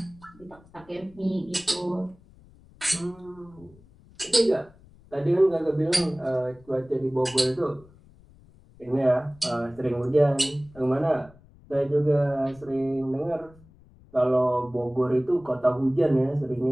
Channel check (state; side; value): noise; left; rumble, 26 dB below the sound